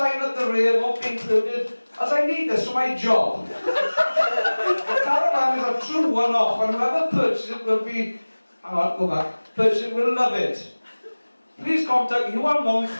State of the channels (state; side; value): inverted; both; correlation -1.00